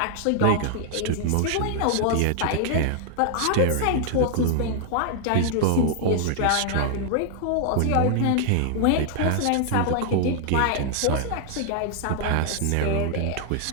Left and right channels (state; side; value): different; both; correlation 0.00